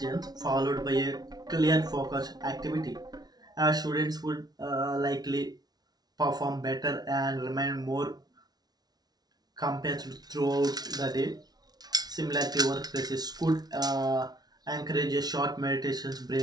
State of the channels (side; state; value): left; late; 0.19 ms